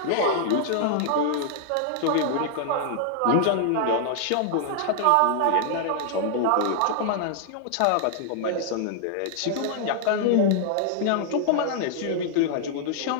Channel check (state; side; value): different; both; correlation -0.01